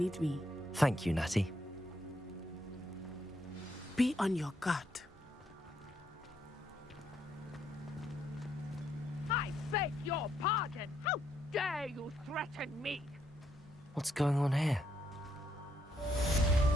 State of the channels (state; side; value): normal; both; correlation 0.75